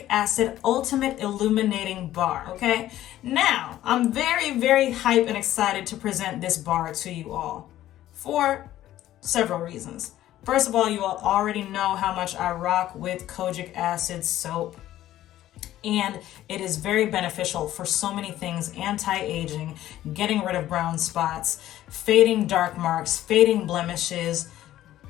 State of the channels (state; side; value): quieter; right; 13.6 dB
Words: Acid Ultimate Illuminating Bar, okay? Now, I'm very hyped and excited to present this bar to you all for several reasons. First of all, you all already know how much I rock with Kojic Acid soap. And it is very beneficial for so many things: anti-aging, getting rid of brown spots, fading dark marks, fading blemishes,